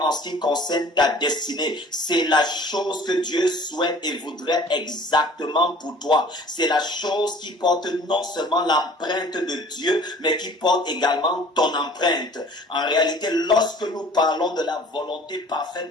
en ce qui concerne ta destinée. C'est la chose que Dieu souhaite et voudrait exactement pour toi. C'est la chose qui porte non seulement l'empreinte de Dieu, mais qui porte également ton empreinte. En réalité, lorsque nous parlons de la volonté parfaite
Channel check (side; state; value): both; normal; correlation 0.49